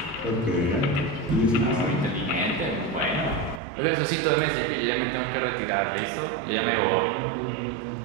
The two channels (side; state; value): left; drops out; at 3.6 s